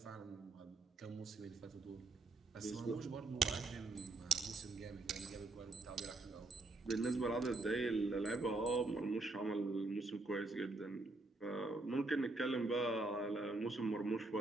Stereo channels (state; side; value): quieter; left; 3.2 dB